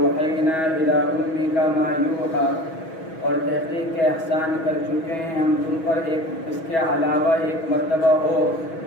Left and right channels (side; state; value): right; late; 6.2 ms